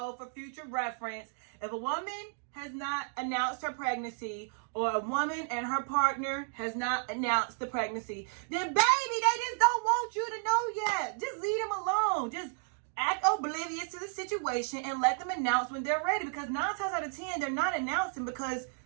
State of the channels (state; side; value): silent; left; 56 dB below the other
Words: for future reference, if a woman has not announced her pregnancy or a woman and her partner has not announced the pregnancy, then baby, they just don't want you to know yet. Just leave them alone. Just act oblivious to the situation and let them announce when they're ready, because 9 times out of 10, they're not announcing because,